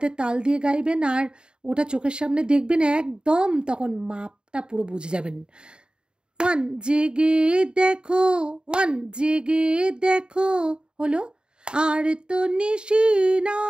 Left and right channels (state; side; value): late; left; 0.050 ms